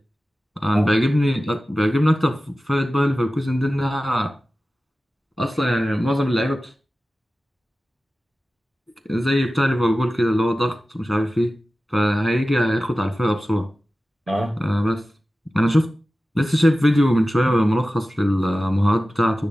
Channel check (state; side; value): normal; both; correlation 0.95